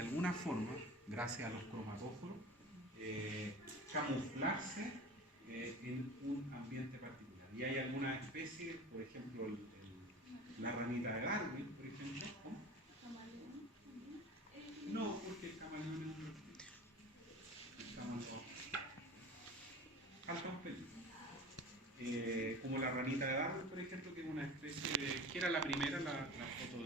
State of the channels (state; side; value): normal; both; correlation 0.37